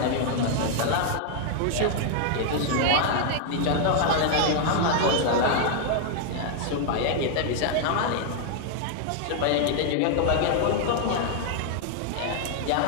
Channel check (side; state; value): both; different; correlation 0.00